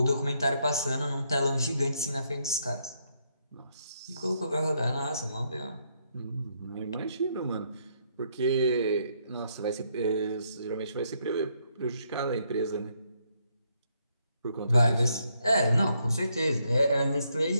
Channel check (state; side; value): inverted; both; correlation -0.74